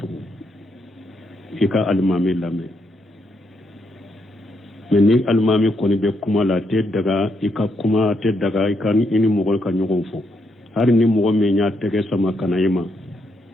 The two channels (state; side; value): normal; both; correlation 0.78